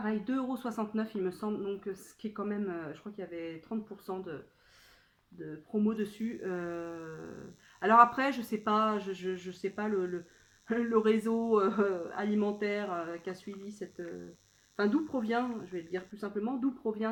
2,69 € il me semble. Donc ce qui est quand même... je crois qu'il y avait 30% de promo dessus. Alors après, je sais pas, je sais pas le réseau alimentaire qui a suivi cette... Enfin, d'où provient, je vais le dire plus simplement, d'où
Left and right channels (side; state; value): both; identical; correlation 1.00